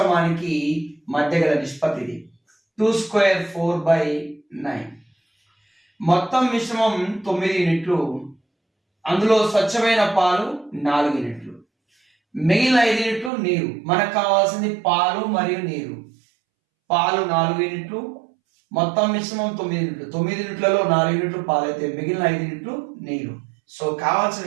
మధ్య గల నిష్పత్తి ఇది 2² 4/9. మొత్తం మిశ్రమం 9 యూనిట్లు, అందులో స్వచ్ఛమైన పాలు 4 యూనిట్లు, మిగిలిన 5 యూనిట్లు నీరు. మనకు కావాల్సింది పాలు మరియు నీరు. పాలు 4 యూనిట్లు, మొత్తం మిశ్రమం 9 యూనిట్లు. 9 యూనిట్లలో 4 యూనిట్లు పాలు అయితే మిగిలిన 5 యూనిట్లు నీరు. సో కావాల్సిన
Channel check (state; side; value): drops out; left; at 13.3 s